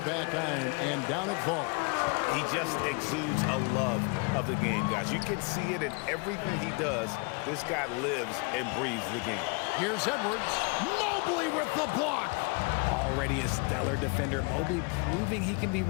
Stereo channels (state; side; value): quieter; right; 32.1 dB